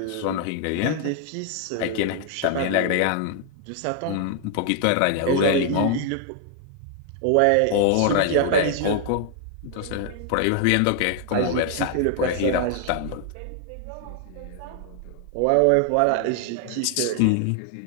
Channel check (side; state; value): both; different; correlation 0.00